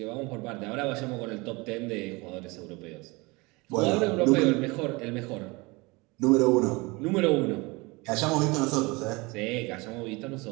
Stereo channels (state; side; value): quieter; left; 25.2 dB